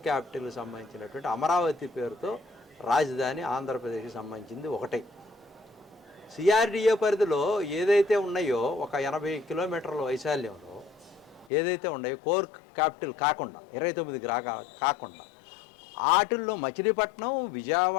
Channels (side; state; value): right; drops out; at 11.5 s